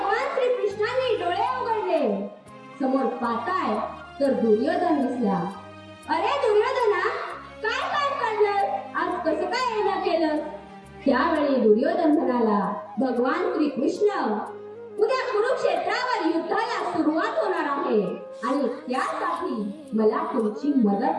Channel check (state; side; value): identical; both; correlation 1.00